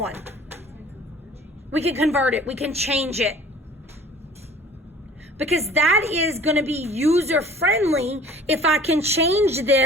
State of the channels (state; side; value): normal; both; correlation 0.48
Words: We can convert it. We can change it. Because that is going to be user-friendly if I can change